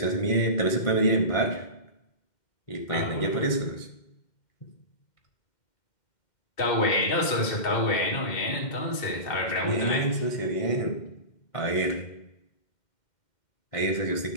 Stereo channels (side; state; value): right; late; 2.1 ms